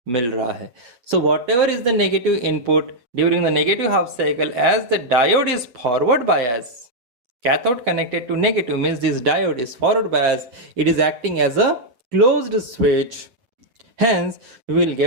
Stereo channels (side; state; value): left; late; 8.3 ms